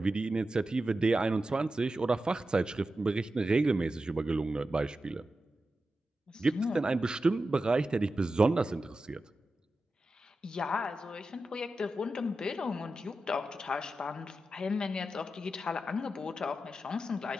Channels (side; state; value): both; normal; correlation 0.91